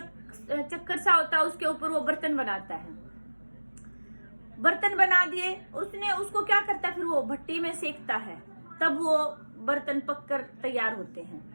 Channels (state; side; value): inverted; both; correlation -1.00